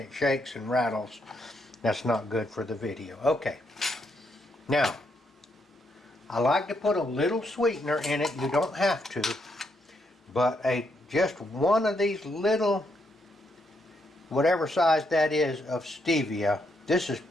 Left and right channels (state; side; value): normal; both; correlation 0.77